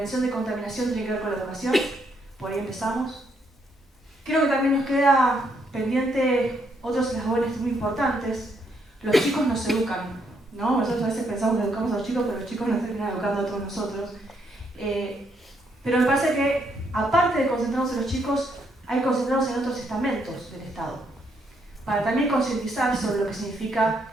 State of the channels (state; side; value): normal; both; correlation 0.74